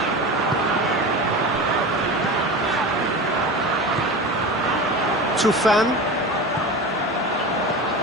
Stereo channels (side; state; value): both; normal; correlation 0.29